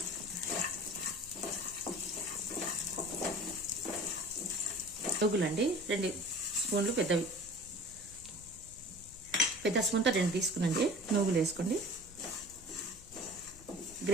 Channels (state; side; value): noise; left; rumble, 20 dB below the sound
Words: నువ్వులండి 2 స్పూన్లు పెద్దవి. పెద్ద స్పూన్తో 2 తీసుకునండి. నువ్వులు వేసుకోండి.